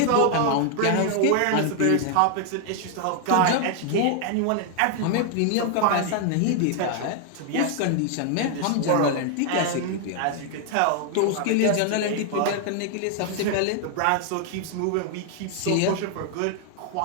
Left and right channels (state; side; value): different; both; correlation 0.00